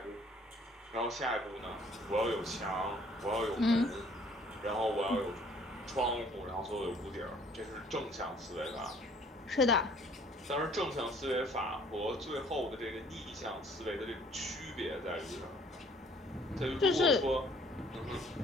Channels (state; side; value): normal; both; correlation 0.58